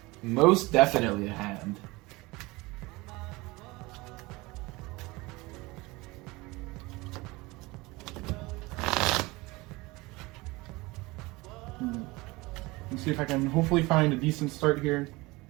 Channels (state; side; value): quieter; left; 22.5 dB